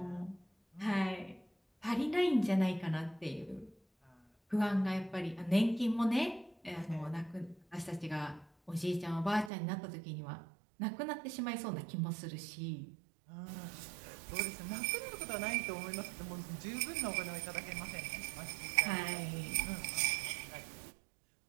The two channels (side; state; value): left; drops out; at 9.5 s